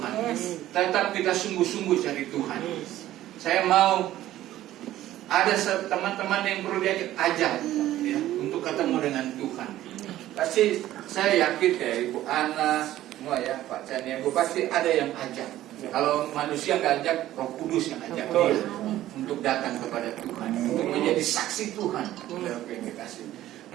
Tetap kita sungguh-sungguh cari Tuhan. Saya mau ada teman-teman yang perlu ajak ya, untuk ketemu dengan Tuhan. Pasti saya yakin ya Ibu Ana, semua ya Pak Chan, Ibu pasti ada yang ajak. Kalau manusia nggak ajak, Roh Kudus yang ajak dia untuk datang kepada Tuhan, untuk menjadi saksi Tuhan.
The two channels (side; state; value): left; quieter; 14.0 dB